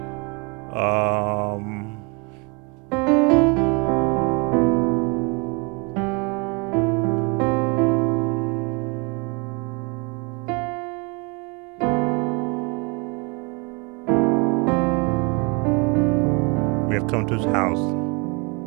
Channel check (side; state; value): left; quieter; 30.9 dB